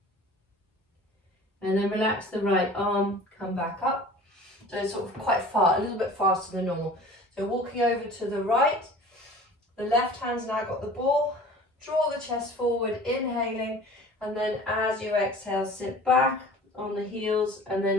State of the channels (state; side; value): normal; both; correlation 0.44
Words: And then relax the right arm, come back up. So it's sort of quite far, a little bit faster than normal. So walking over to the right, the left hand's now got the ball. Draw the chest forward, inhaling. And then as you exhale, sit back on the heels and